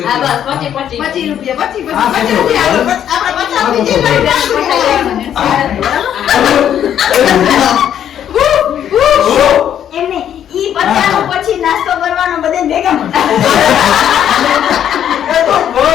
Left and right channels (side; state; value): right; quieter; 9.9 dB